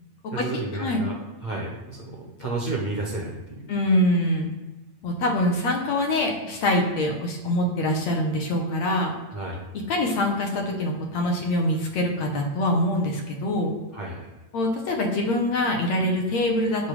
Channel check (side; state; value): right; late; 8.8 ms